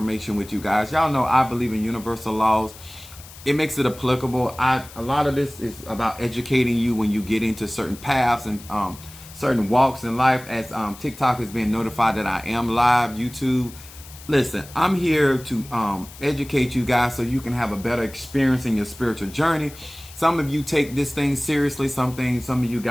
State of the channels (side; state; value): left; noise; hiss, 18 dB below the sound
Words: with you guys. Y'all know I believe in universal laws. It makes it applicable. A lot of this is about educating you when you get into certain paths and certain walks in life. As TikTok is being notified that I am live, YouTube. Listen, I'm here to educate you guys so you can have a better experience in your spiritual journey. Some of you take this thing seriously. Some of you